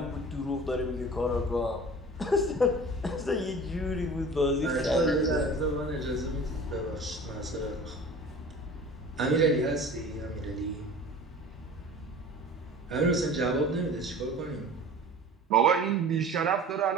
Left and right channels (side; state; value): both; normal; correlation 0.41